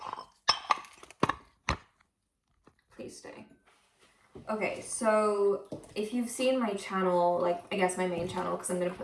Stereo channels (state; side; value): identical; both; correlation 1.00